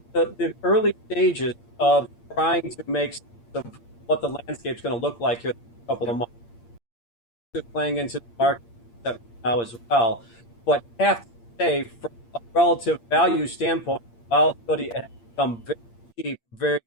early stages of trying to make sense of what the landscape's going to look like here in a couple of months. Just playing into the market now as well. But I have to say, from a relative value standpoint, volatility has become very cheap very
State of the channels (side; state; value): right; late; 8.6 ms